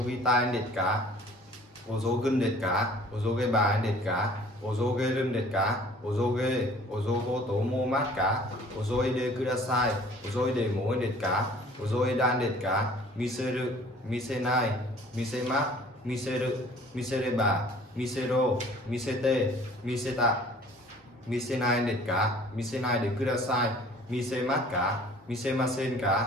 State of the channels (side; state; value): both; normal; correlation 0.51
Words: ぎたいですか遅ぐんですか遅げばいですか遅げるんですか遅げ遅ごと思いますか遅いでください遅いでもいいですか遅いだんですか見せる見せない見せます見せる見せれば見せろ見せて見せた見せないですか見せないでください見せますか見せません